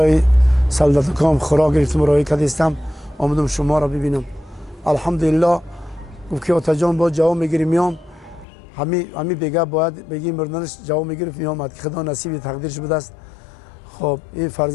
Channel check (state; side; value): drops out; right; at 8.5 s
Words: سلدتکام خوراک گرفتم راه کدیستم آمدم شما را ببینم. الحمدلله. گفت که آتا جان با جواب میگیری میام. همی بگه باید بگی مردنش جواب میگرفت میامد که خدا نصیب تقدیرش بوده است. خب این